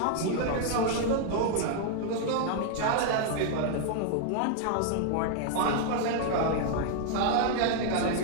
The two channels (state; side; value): different; both; correlation 0.00